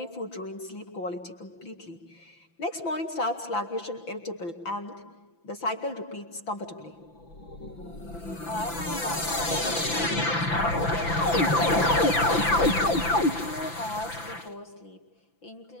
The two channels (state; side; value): late; right; 5.9 ms